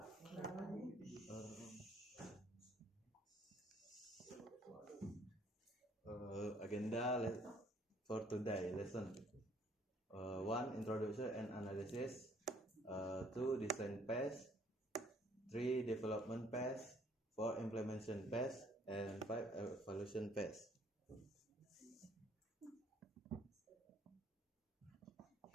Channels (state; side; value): normal; both; correlation 0.62